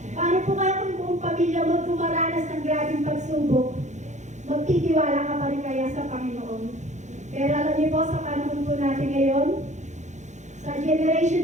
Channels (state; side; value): late; left; 0.34 ms